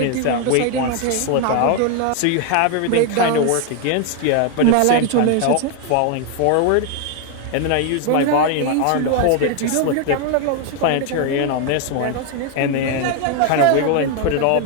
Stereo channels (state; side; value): different; both; correlation 0.00